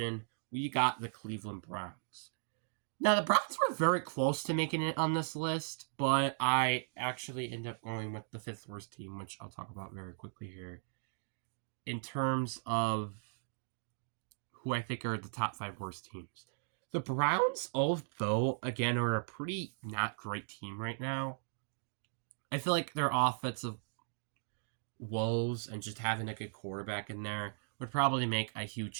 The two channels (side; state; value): left; silent; digital silence